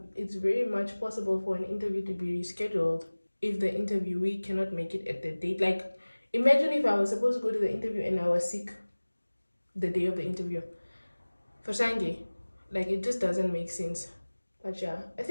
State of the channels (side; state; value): both; inverted; correlation -1.00